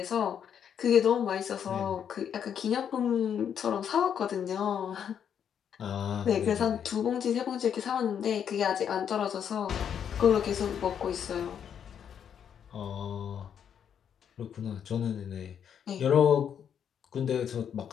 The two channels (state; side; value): quieter; right; 8.3 dB